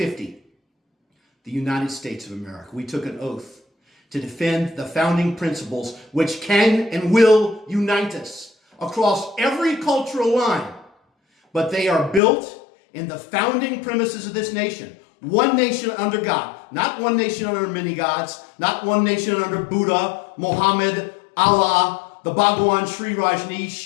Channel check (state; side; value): drops out; right; at 12.2 s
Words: The United States of America. We took an oath to defend the founding principles which can and will unite us across every cultural line. But they are built in the founding premises of this nation. One nation under God. Not one nation under many gods. Not one nation under Buddha, Muhammad, Allah, the Bhagwan, Sri